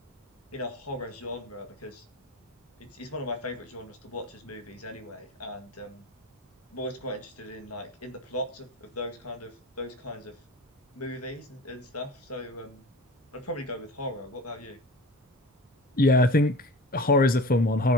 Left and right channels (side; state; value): both; normal; correlation 0.36